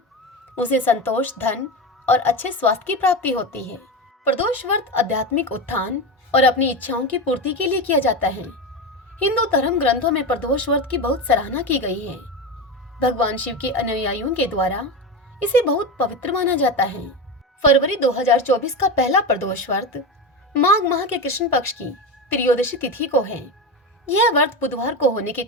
उसे संतोष, धन और अच्छे स्वास्थ्य की प्राप्ति होती है। प्रदोष व्रत आध्यात्मिक उत्थान और अपनी इच्छाओं की पूर्ति के लिए किया जाता है। हिंदू धर्म ग्रंथों में प्रदोष व्रत की बहुत सराहना की गई है। भगवान शिव के अनुयायियों के द्वारा इसे बहुत पवित्र माना जाता है। फरवरी 2024 का पहला प्रदोष व्रत माघ माह के कृष्ण पक्ष की त्रयोदशी तिथि को है। यह व्रत बुधवार को होने के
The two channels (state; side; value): normal; both; correlation 0.20